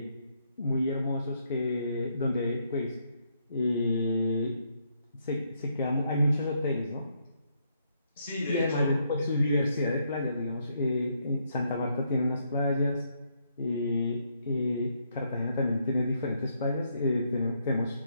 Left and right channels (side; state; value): both; inverted; correlation -0.75